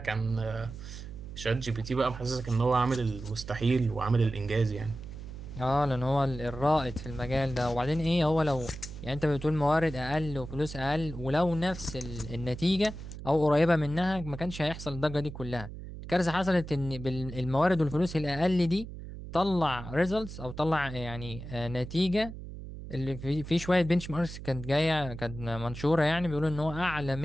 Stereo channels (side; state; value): right; noise; hum, 11 dB below the sound